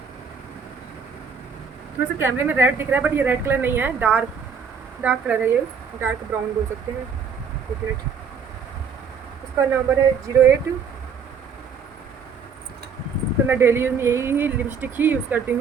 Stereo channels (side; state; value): left; quieter; 6.0 dB